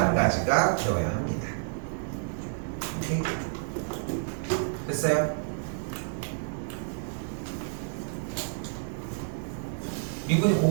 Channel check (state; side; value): silent; left; digital silence